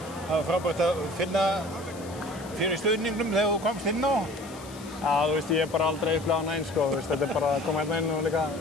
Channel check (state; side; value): noise; left; hiss, 19 dB below the sound